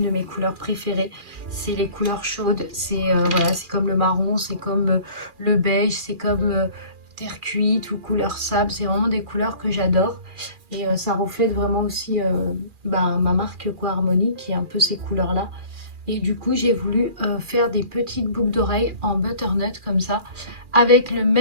de mes couleurs préférées. C'est les couleurs chaudes. C'est voilà, c'est comme le marron, c'est comme le beige, c'est comme terre cuite ou couleur sable. C'est vraiment des couleurs que j'adore. Et ça reflète vraiment aussi ma marque Harmonie qui est un peu ces couleurs-là. Et du coup, j'ai voulu faire des petites boucles d'oreilles en butternut comme ça, avec le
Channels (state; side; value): late; left; 2.4 ms